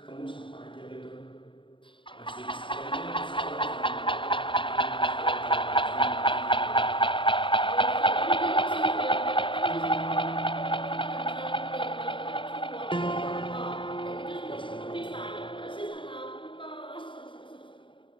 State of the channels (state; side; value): late; right; 0.24 ms